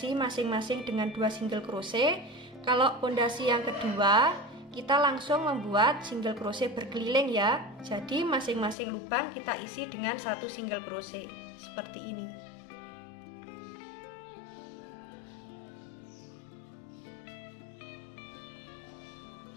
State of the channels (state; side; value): drops out; right; at 8.8 s